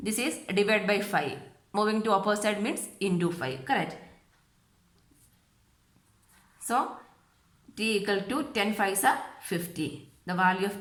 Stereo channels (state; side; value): identical; both; correlation 1.00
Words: is divided by 5. Moving to opposite means into 5. Correct. So, T equal to 10 5s are 50. The value